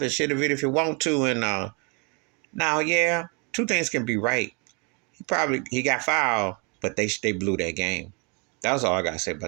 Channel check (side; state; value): left; quieter; 32.5 dB